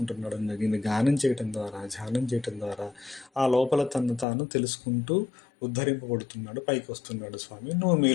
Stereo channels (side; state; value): right; drops out; at 4.2 s